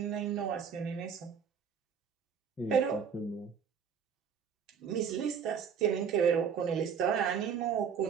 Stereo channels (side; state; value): left; quieter; 7.1 dB